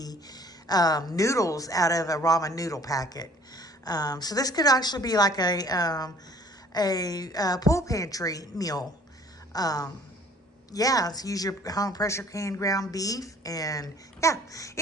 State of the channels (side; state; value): both; normal; correlation 0.54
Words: noodles out of a ramen noodle packet. So this could actually be like a pool pantry meal. Yeah, so use your home pressure canned ground beef, and yeah.